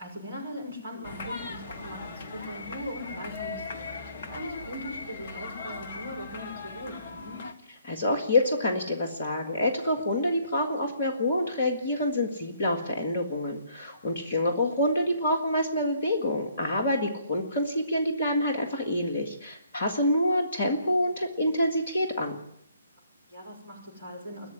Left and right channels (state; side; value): inverted; both; correlation -0.64